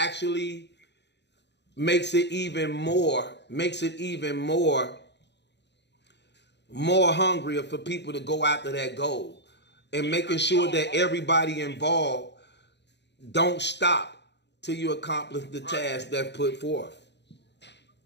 makes it even more hungrier for people to go after that goal, and making sure that everybody involved don't stop till you accomplish the task that's put forth.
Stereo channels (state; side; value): late; right; 0.50 ms